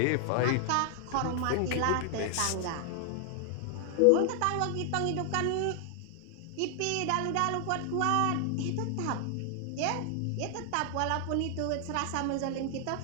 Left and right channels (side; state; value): both; different; correlation 0.00